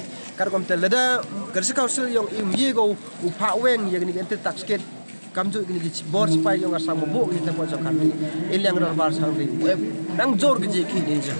kar kom tel da district council yang I go u pha weng ya gni anti taxket kamju gni gi board spy yang Assam bo gi ta po chong khanli ilang dorbar sangli nang jor gi khi ni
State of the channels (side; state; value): both; inverted; correlation -1.00